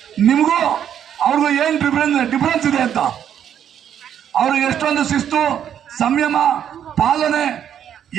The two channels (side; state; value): left; quieter; 9.5 dB